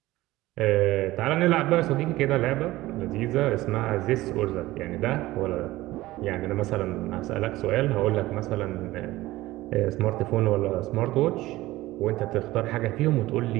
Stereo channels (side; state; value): left; quieter; 17.6 dB